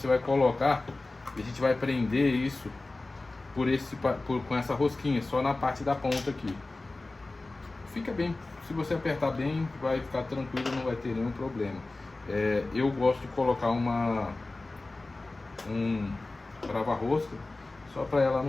vai colocar e a gente vai prender isso com essa rosquinha, só na parte da ponta aqui. Fica bem, se você apertar bem, vai ficar tranquilo, não vai ter nenhum problema. Eu gosto de colocar um trava-rosca, só para ela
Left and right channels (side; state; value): right; quieter; 3.1 dB